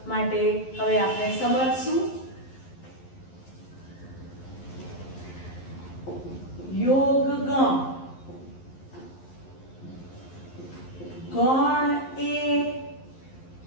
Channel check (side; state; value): right; late; 11 ms